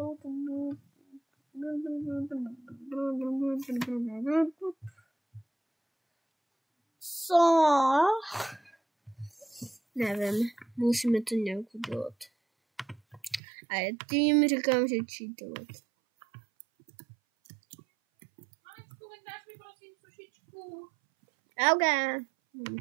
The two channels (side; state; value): left; drops out; at 13.4 s